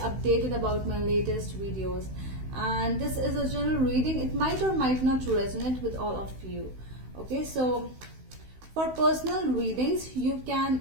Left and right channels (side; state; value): left; late; 16 ms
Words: about my latest videos. And this is a general reading. It might or might not resonate with all of you. Okay, so for personal readings, you